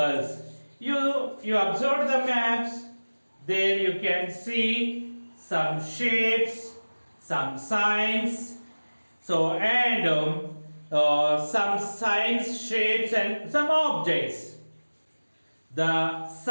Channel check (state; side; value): inverted; both; correlation -1.00